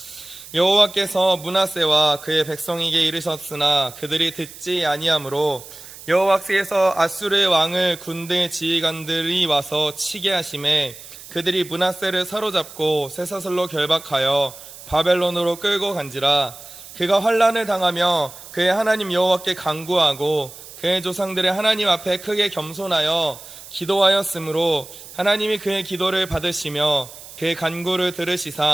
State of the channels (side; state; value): right; noise; hiss, 16 dB below the sound